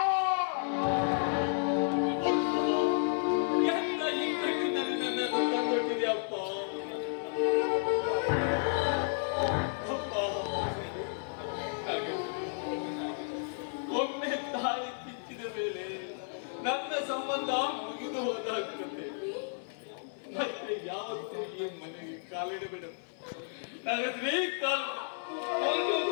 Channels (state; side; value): silent; right; 56 dB below the other